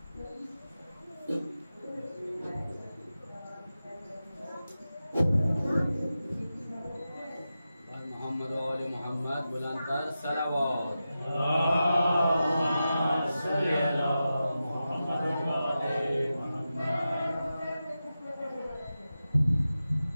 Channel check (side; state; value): both; inverted; correlation -0.92